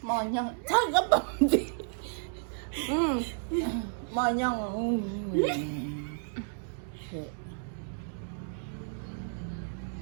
Monyong cakep banget. Monyong.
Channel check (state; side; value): silent; left; digital silence